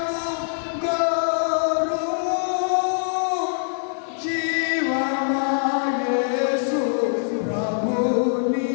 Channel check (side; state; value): right; silent; digital silence